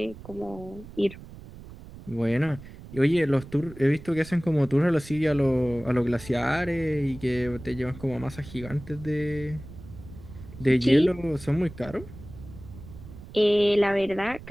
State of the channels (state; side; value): noise; right; rumble, 16 dB below the sound